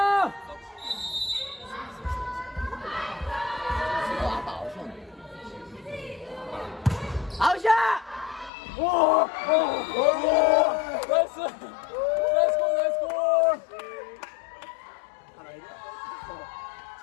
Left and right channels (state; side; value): drops out; right; at 8.5 s